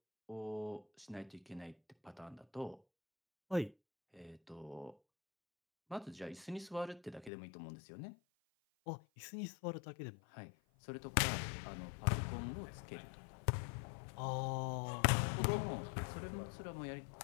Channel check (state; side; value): drops out; right; at 7.3 s